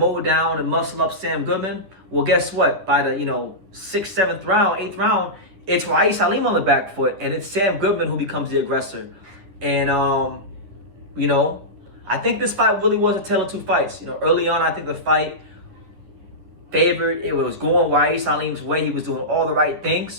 down and muscle up Sam Goodman. Well, guess what? By the, you know, 6th, 7th round, 8th round, it's Aleem on the back foot, and it's Sam Goodman who becomes the aggressor. And, you know, I think this fight really was a tale of two fights. You know, early on, I think the fight favored. It was going Aleem's way. He was doing all the right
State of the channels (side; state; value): left; late; 10 ms